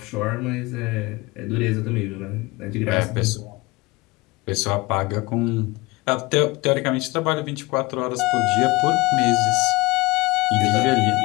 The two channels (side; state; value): right; quieter; 22.5 dB